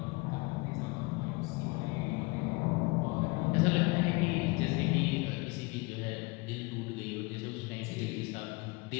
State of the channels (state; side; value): quieter; right; 26.2 dB